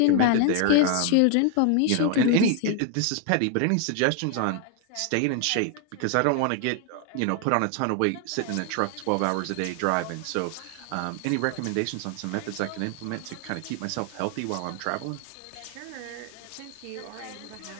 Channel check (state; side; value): different; both; correlation 0.00